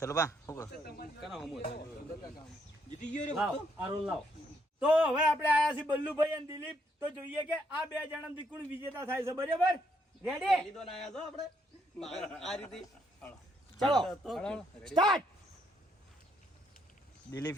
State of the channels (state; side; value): normal; both; correlation 0.73